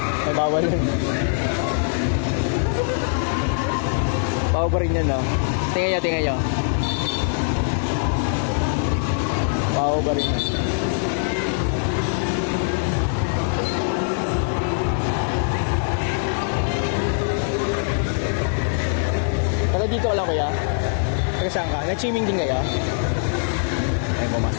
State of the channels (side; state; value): right; silent; 64 dB below the other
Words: Ay, bawal yun. Bawal pa rin yan, no? Tingnan nyo. Bawal pa rin yan. Taga dito ka lang, kuya? Taga saan ka? Nag-swimming din kayo? Ay,